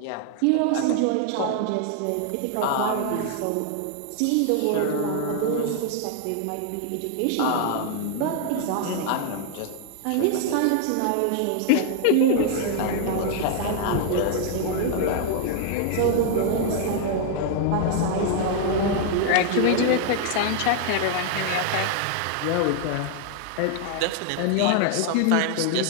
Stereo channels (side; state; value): both; different; correlation 0.00